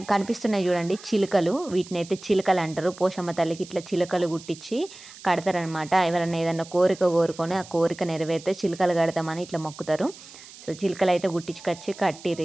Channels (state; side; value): noise; right; hiss, 18 dB below the sound